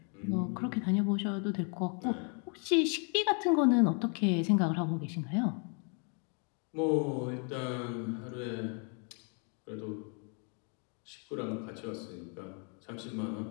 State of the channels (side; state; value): right; quieter; 39.4 dB